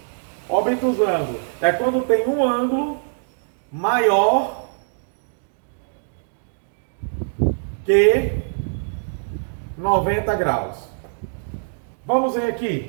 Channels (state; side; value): silent; left; digital silence